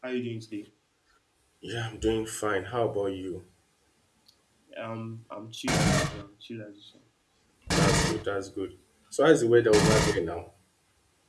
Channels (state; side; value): identical; both; correlation 1.00